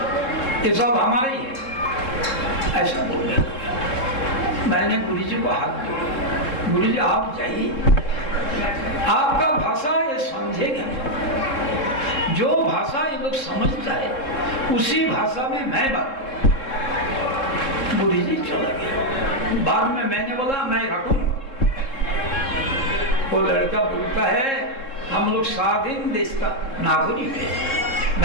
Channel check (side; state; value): right; late; 3.7 ms